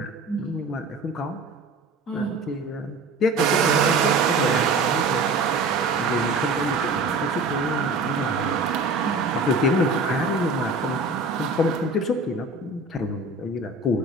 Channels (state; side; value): quieter; left; 3.1 dB